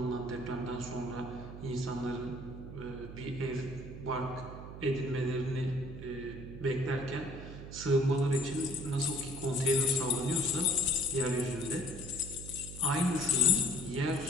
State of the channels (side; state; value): right; noise; hum, 11 dB below the sound